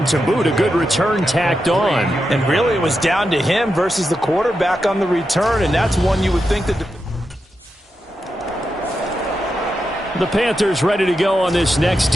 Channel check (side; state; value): both; normal; correlation 0.87